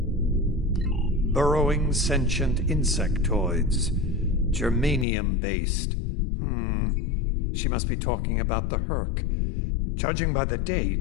Burrowing sentient insectoids. Germanium-based. She must be talking about the Herc. Judging by the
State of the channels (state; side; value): drops out; right; at 5.1 s